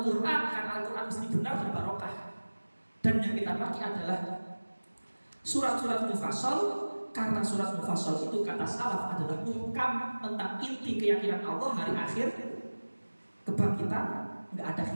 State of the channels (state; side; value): inverted; both; correlation -1.00